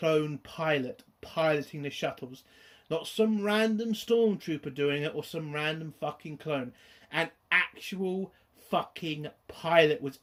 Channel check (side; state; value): both; identical; correlation 1.00